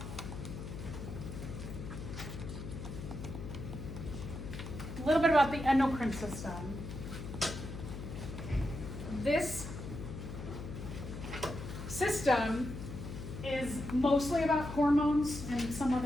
A little bit about the endocrine system. This system is mostly about hormones and some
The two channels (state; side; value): noise; left; hum, 8 dB below the sound